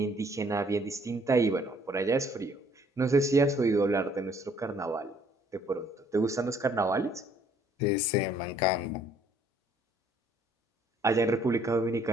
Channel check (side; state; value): both; normal; correlation 0.62